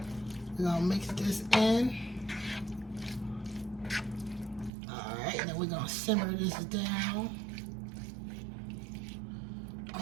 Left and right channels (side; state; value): left; drops out; at 4.7 s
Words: We're going to mix this in. Alright, and then we're going to simmer this down.